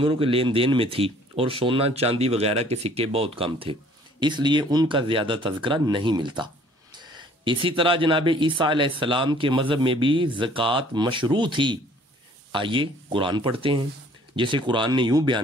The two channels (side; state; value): both; normal; correlation 0.56